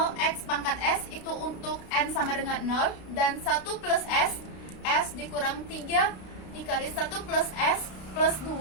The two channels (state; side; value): late; right; 32 ms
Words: X pangkat S itu untuk N sama dengan 0, dan 1 plus S dikurang 3 dikali 1 plus S plus 2